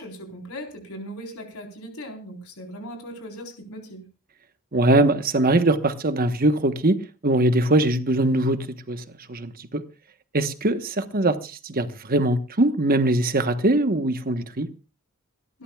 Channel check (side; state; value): both; normal; correlation 0.41